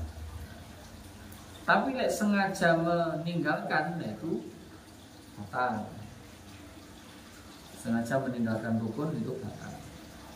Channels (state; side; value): identical; both; correlation 1.00